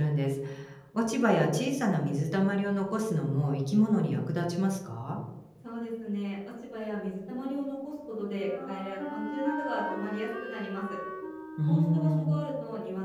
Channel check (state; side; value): identical; both; correlation 1.00